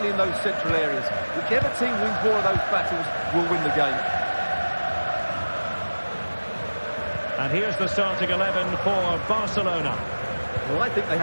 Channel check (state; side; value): inverted; both; correlation -1.00